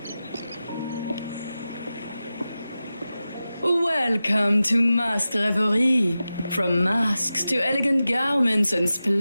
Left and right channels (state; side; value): inverted; both; correlation -0.94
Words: Welcome to Masked Reverie. From masks to elegant garments and